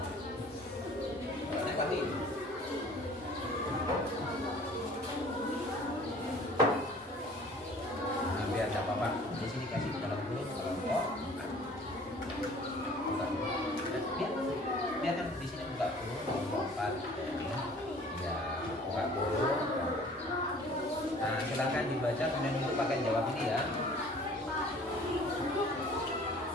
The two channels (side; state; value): both; normal; correlation 0.50